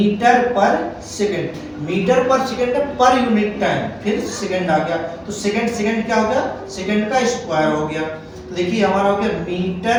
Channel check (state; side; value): identical; both; correlation 1.00